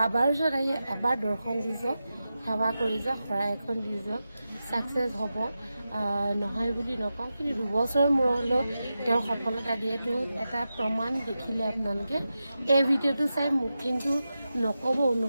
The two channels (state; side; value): inverted; both; correlation -0.91